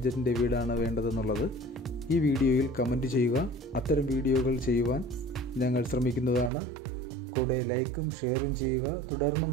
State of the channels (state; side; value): drops out; left; at 6.5 s